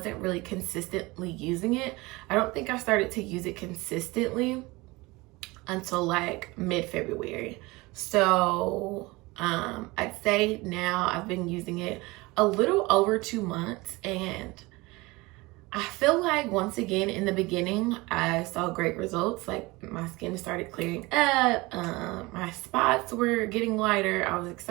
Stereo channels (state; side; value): quieter; left; 22.6 dB